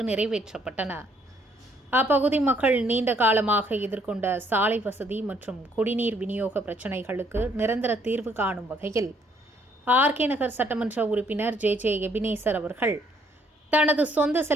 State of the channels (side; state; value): both; normal; correlation 0.67